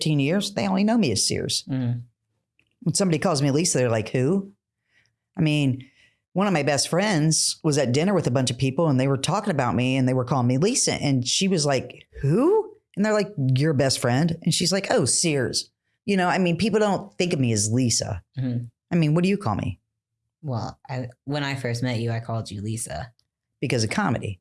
years. They only know me as Sears. Mm. When somebody calls me Lisa, they're like, who? I mean, one of my best friends was at dinner with a bunch of people and they were talking about me and they were calling me Lisa. And she was like, who? And they're like, your best friend. And she's like, oh, Sears. People don't think of me as Lisa. Mm-hmm. I mean, what do you call me? Well, when I first met you, I called you Lisa. Because of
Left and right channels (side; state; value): both; identical; correlation 1.00